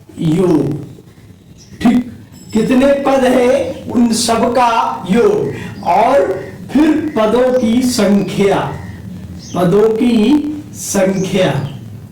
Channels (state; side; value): identical; both; correlation 1.00